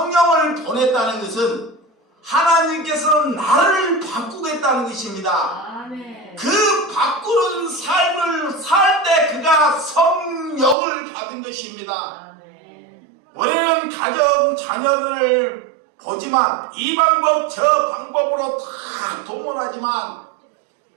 보냈다는 것은 하나님께서는 나를 바꾸겠다는 것입니다. 그 바꾸는 삶을 살 때 그가 성령을 받은 것입니다. 우리는 가정 자녀들을 보지만 이 방법 저 방법으로 다 동원하지만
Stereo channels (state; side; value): drops out; left; at 10.8 s